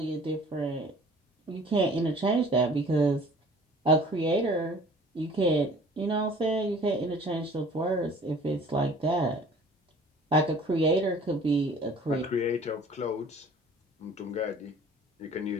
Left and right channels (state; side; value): normal; both; correlation 0.49